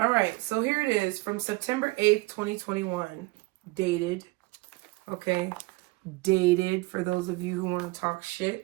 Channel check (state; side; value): quieter; left; 23.1 dB